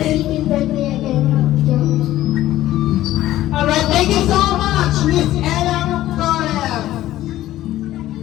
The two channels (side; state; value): right; quieter; 14.5 dB